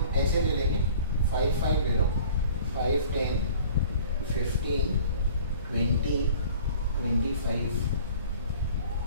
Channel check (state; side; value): inverted; both; correlation -0.47